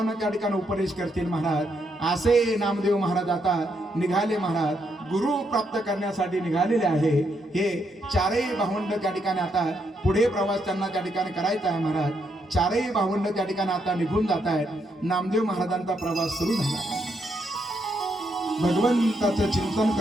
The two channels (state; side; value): normal; both; correlation 0.78